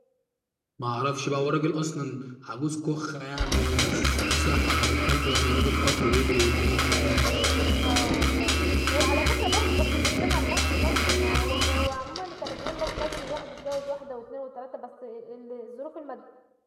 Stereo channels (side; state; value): both; identical; correlation 1.00